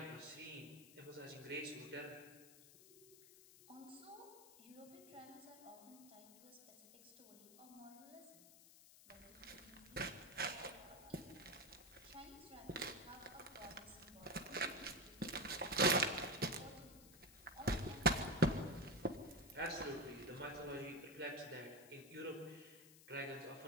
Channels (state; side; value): noise; left; hiss, 19 dB below the sound